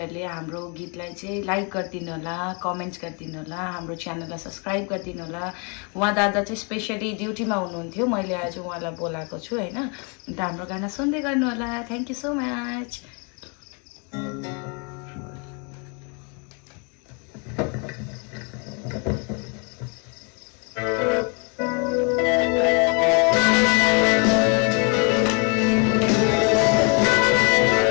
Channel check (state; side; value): quieter; right; 34.6 dB